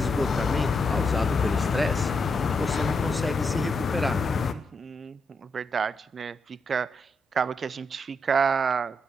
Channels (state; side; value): normal; both; correlation 0.81